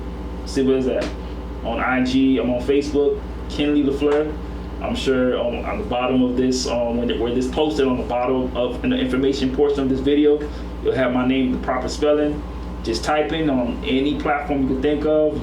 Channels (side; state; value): both; identical; correlation 1.00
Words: See what is that? On IG, I'm on Facebook, Keinly Lafleur. I'm sure on the bottom of this, where this posted on the bottom of in the information portion of this video, you'll have my name, the proper spelling. Just type in on any platform you can think of,